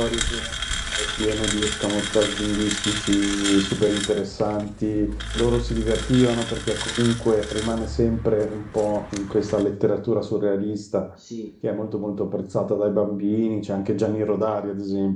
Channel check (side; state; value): both; identical; correlation 1.00